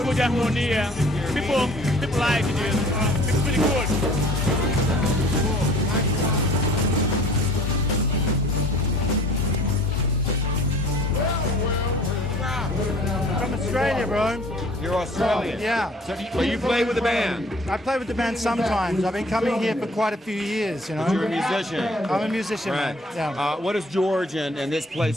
good harmony. People like it. It's pretty good. From Australia, bro. You're Australian. Yeah. So you play with the band. I play with the band sometimes. I've been coming here for quite a few years, you know. You're a musician. I'm a musician, Right. man. Yeah. What has George and this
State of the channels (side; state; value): both; normal; correlation 0.50